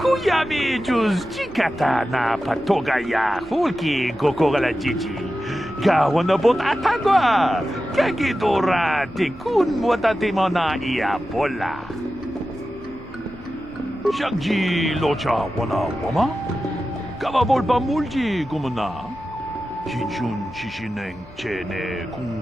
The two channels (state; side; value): normal; both; correlation 0.93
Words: juz chikata na patoga ya, fulki kokogala jiji. Gawana bot atagwa, kagidora tikun watatimo na iya bola. Shagji locha wana wama? Kawabolpa mulji kumuna? Shinshun shishineng chene